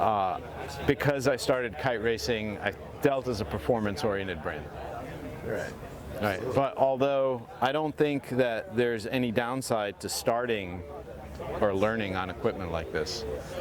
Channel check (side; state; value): both; identical; correlation 1.00